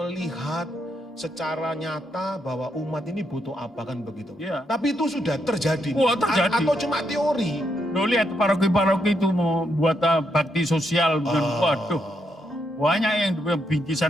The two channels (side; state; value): both; normal; correlation 0.79